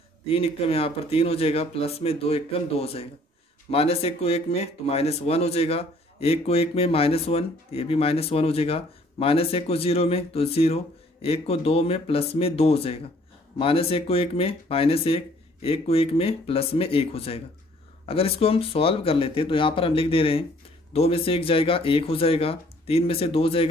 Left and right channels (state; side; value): normal; both; correlation 0.59